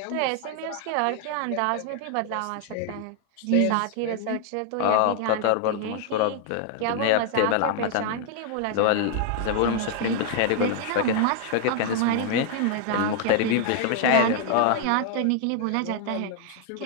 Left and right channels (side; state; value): both; different; correlation 0.00